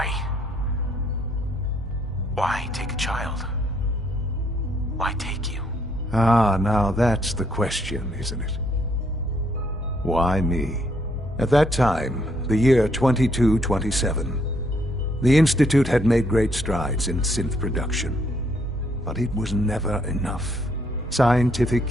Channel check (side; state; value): both; normal; correlation 0.70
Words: Why take a child? Why take you? Ah, now that's the question, isn't it? Why me? At that time, the year 2227, the Institute had made great strides in synth production. But it was never enough. Scientific